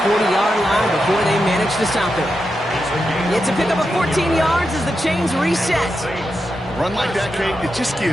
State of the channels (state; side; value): normal; both; correlation 0.87